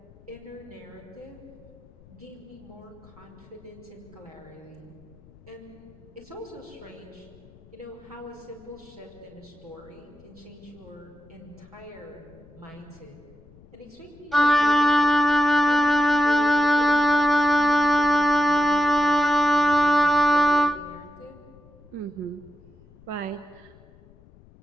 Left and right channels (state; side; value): noise; left; rumble, 25 dB below the sound